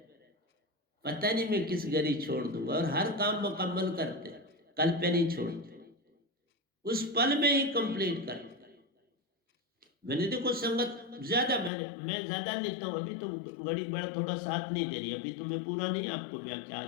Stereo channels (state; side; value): drops out; right; at 11.7 s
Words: पता नहीं मैं किस घड़ी छोड़ दूंगा। और हर काम मुकम्मल करते हैं, कल पे नहीं छोड़ते। उस पल में ही कंप्लीट कर। मैंने देखो संगत ज्यादा मैं ज्यादा लिखता हूँ, अभी तो घड़ी बड़ा थोड़ा साथ नहीं दे रही, अभी तो मैं पूरा नहीं आपको व्याख्या